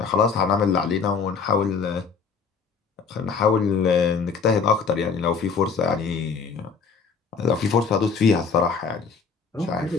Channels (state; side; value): quieter; right; 5.5 dB